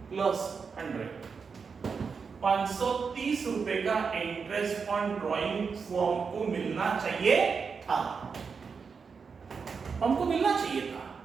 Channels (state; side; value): quieter; left; 5.5 dB